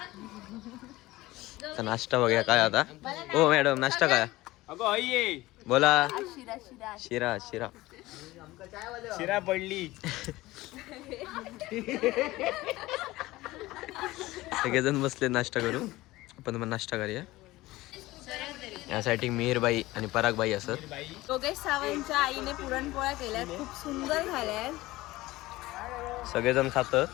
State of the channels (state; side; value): quieter; right; 18.5 dB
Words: आता नाश्ता बघूया काय आता. हो मॅडम, नाश्ता काय? बोला. शिरा शिरा शिरा पडली. सगळेजण बसले नाश्ता करू. आपण पण नाश्ता करूया. यासाठी मिहीरबाई आणि परागबाई असत. योगेश सावंतच्या आईने पुरणपोळ्या केल्यात, खूप सुंदर झाल्यात. सगळेजण खात.